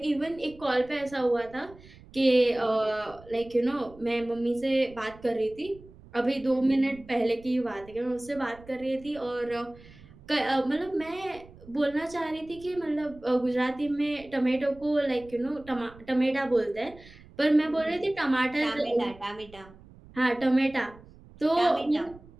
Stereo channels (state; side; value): noise; right; rumble, 22 dB below the sound